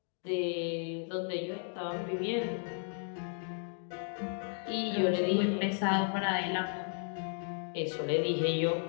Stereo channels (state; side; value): silent; right; 55 dB below the other